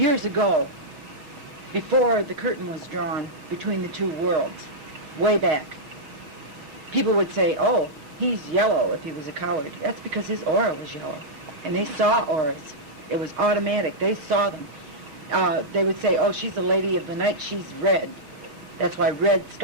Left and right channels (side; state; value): left; late; 6.1 ms